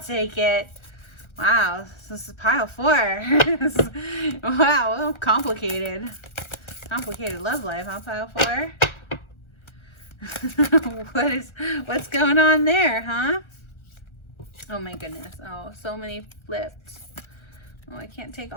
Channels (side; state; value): right; late; 1.4 ms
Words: it. Wow, this is pile 4. Wow, well, complicated. Complicated love life, huh, pile 4? What's going on there, huh? Oh my goodness. Oh, so many flipped. Oh, I can't take